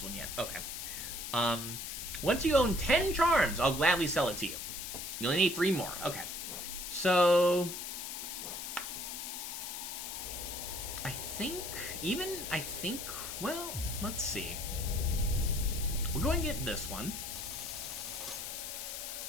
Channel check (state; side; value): noise; left; hiss, 6 dB below the sound